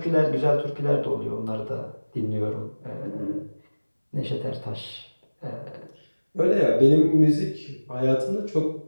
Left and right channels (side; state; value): both; inverted; correlation -1.00